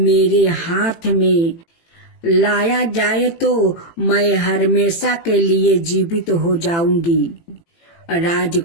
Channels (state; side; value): late; right; 18 ms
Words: हाथ में लाया जाए तो मैं हमेशा के लिए जीवित हो जाऊंगी।